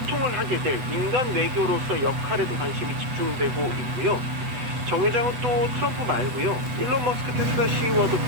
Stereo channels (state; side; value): late; left; 8.2 ms